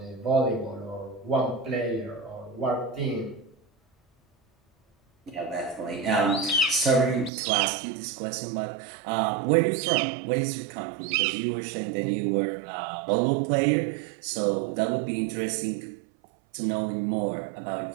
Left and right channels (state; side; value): drops out; left; at 7.3 s